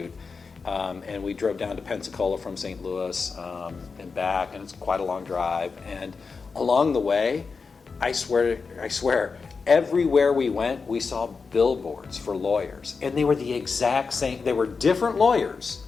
and we drove down to Pensacola from St. Louis and back, and it's quite a long drive. And along the way, I swear, everywhere we went, we saw billboards for lawyers, and they were the exact same. They were different lawyers,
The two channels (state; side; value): quieter; right; 4.9 dB